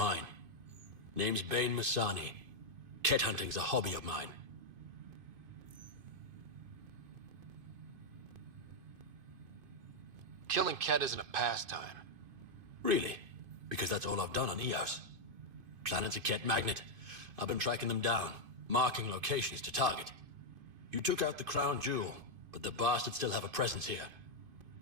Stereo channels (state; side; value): late; left; 2.5 ms